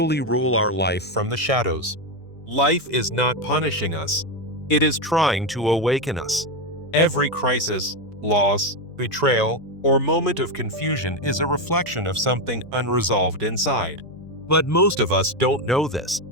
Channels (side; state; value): both; normal; correlation 0.09